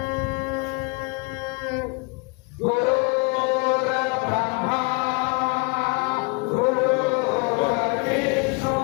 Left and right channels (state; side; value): quieter; right; 32.0 dB